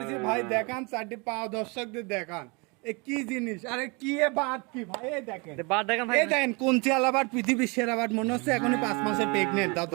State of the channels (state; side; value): quieter; left; 29.5 dB